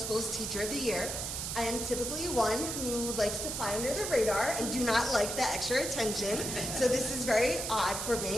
Teacher of the Year. I am typically one who likes to fly under the radar and do not like the extra attention, so this is very odd for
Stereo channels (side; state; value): right; noise; hiss, 3 dB below the sound